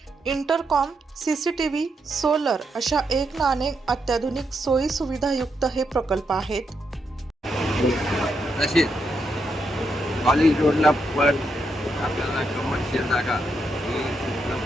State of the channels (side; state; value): both; normal; correlation 0.81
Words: intercom, CCTV, solar अशा एक ना अनेक अत्याधुनिक सोयी सुविधायुक्त हे प्रकल्प आहेत। तसेच कॉलेज रोडला पण आपल्याला कमर्शियल जागा ही